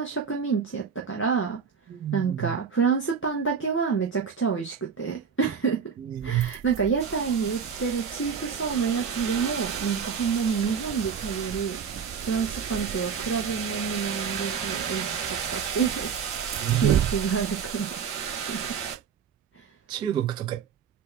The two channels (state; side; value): quieter; left; 6.6 dB